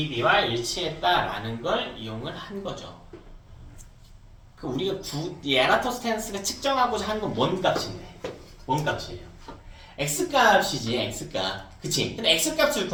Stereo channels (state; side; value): identical; both; correlation 1.00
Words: b와 일치했다라는 걸 이용을 한 거죠. 그 우리가 이 에라토스테네스가 측정하고자 하는 건 뭔 값인데? 뭔 값이에요? x값이지, x값. 그치? 근데 x값을